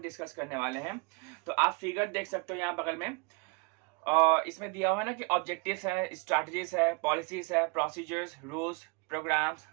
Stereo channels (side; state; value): left; quieter; 30.2 dB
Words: डिस्कस करने वाले हैं। तो आप फिगर देख सकते हो यहाँ बगल में। इसमें दिया हुआ है ना कि ऑब्जेक्टिव्स है, स्ट्रैटेजीज है, पॉलिसीज है, procedures, rules, programmes,